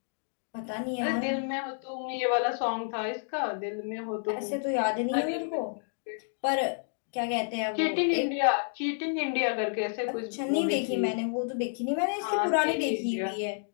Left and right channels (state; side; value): silent; right; digital silence